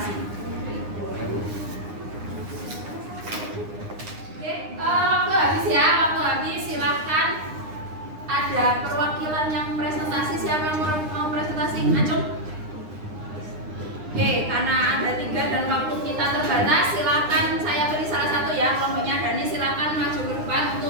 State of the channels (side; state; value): left; late; 9.8 ms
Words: Oke, waktu habis ya, waktu habis. Silahkan, ada perwakilan yang presentasi. Siapa yang mau presentasi? Acung. Oke, karena ada 3 dan waktu kita terbatas, silakan saya beri salah satu ya, kelompoknya Dani, silakan maju ke depan